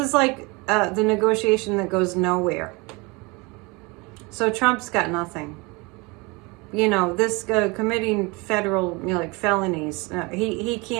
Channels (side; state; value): left; quieter; 26.7 dB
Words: like the negotiation that goes nowhere. So Trump's got nothing. you know, this committing federal, you know, like felonies. He